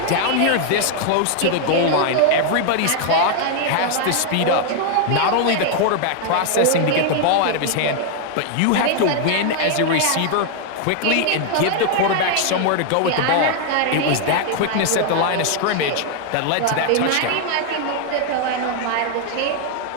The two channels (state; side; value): different; both; correlation 0.00